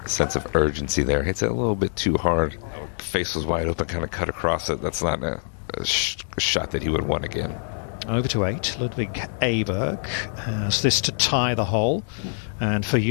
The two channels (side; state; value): right; silent; digital silence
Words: of urgency there. Hits it a little bit too hard. Face was wide open, kind of cut across it. That's not a shot that he would want again. Over to 8, Ludwig Åberg has this to tie the hole, and for